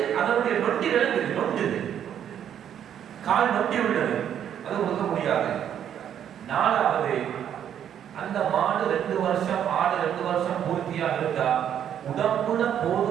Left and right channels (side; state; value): left; quieter; 9.5 dB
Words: அதனுடைய நொண்டி விளங்குது, நொண்டுது, கால் நொண்டி உள்ளது, அது கொடுக்க முடியாது. 4வது அந்த மாடு 2 வருஷம் ஆடு 2 வருஷம் பூர்த்தியாக இருந்தா உடம்புல